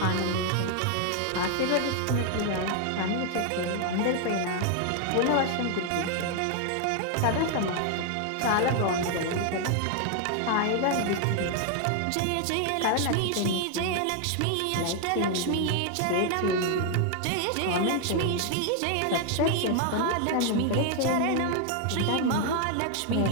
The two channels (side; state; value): both; different; correlation 0.00